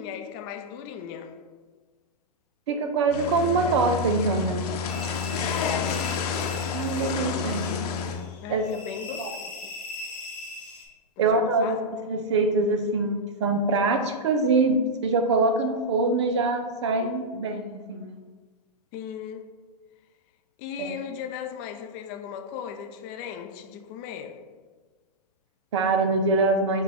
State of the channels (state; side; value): normal; both; correlation -0.04